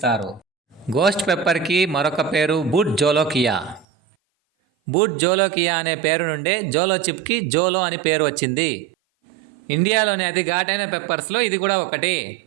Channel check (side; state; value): left; drops out; at 3.9 s